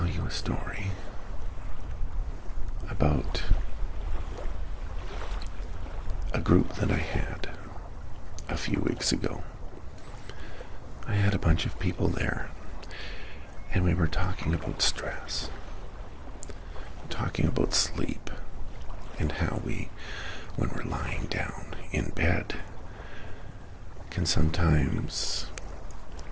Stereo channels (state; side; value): identical; both; correlation 1.00